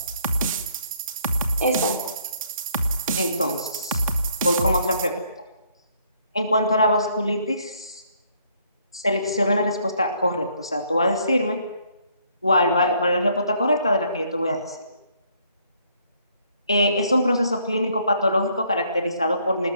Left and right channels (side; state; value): both; inverted; correlation -0.66